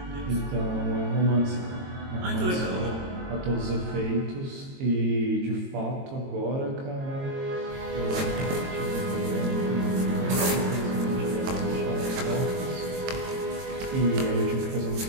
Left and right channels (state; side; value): late; left; 22 ms